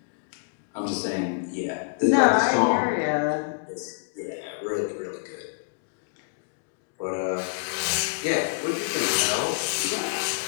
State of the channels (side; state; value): right; silent; digital silence